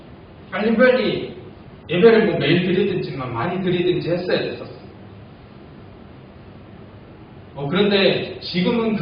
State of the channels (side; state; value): both; identical; correlation 1.00